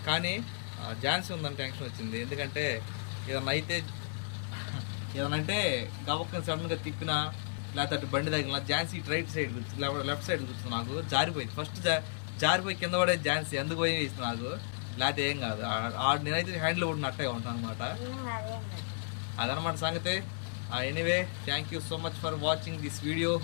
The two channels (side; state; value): right; silent; digital silence